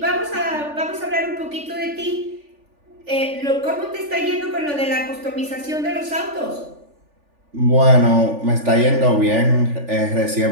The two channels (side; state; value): left; late; 3.4 ms